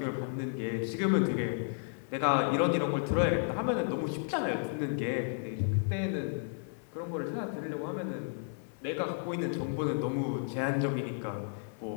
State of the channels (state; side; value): silent; right; 56 dB below the other